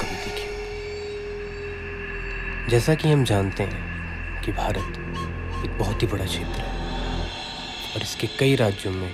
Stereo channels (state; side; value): identical; both; correlation 1.00